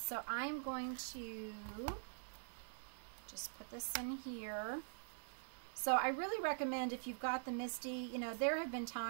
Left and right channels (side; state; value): left; silent; digital silence